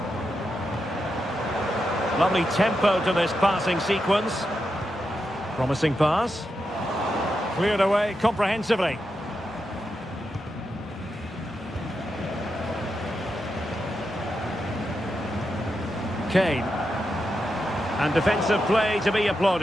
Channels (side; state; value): both; normal; correlation 0.86